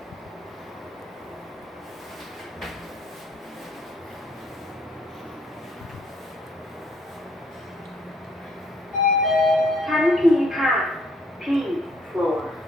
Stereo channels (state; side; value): normal; both; correlation 0.65